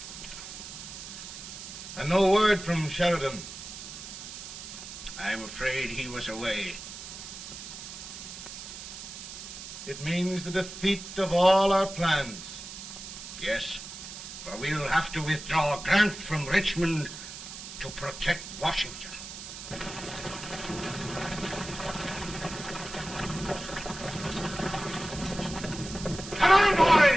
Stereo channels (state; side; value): noise; right; hiss, 11 dB below the sound